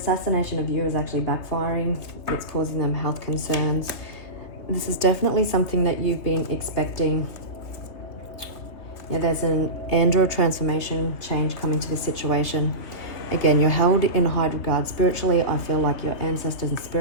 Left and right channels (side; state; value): right; late; 3.3 ms